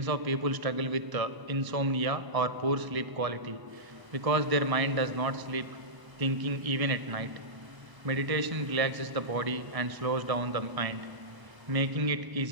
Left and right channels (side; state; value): left; late; 1.0 ms